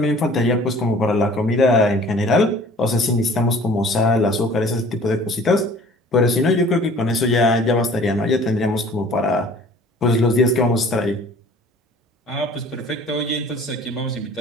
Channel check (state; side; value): normal; both; correlation 0.50